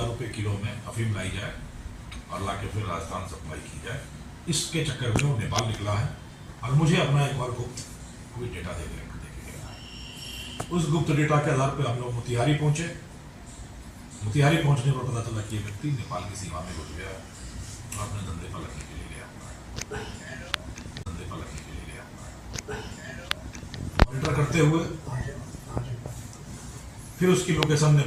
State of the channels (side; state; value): both; identical; correlation 1.00